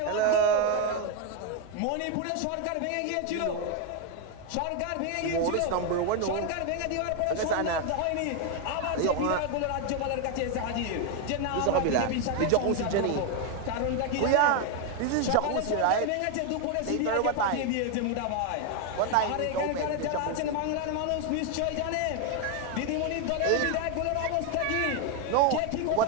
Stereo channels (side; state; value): both; different; correlation 0.01